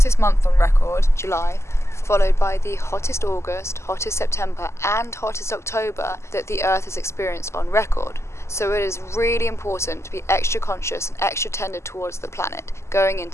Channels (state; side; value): late; right; 0.13 ms